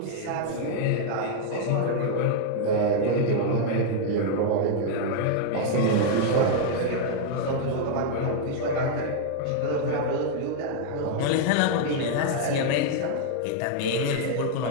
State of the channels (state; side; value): different; both; correlation 0.00